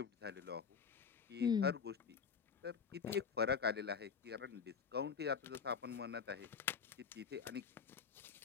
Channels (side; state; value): right; quieter; 6.3 dB